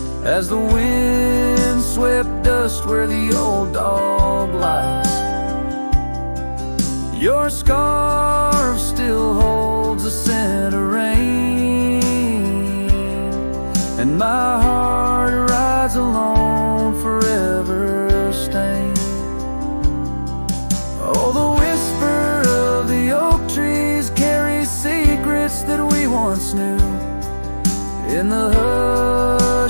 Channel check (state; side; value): inverted; both; correlation -1.00